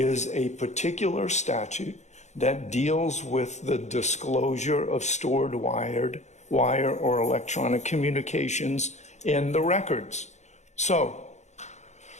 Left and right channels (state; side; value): late; right; 0.33 ms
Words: a particular statute that deals with the disclosure of stored wire or electronic communications in the records. So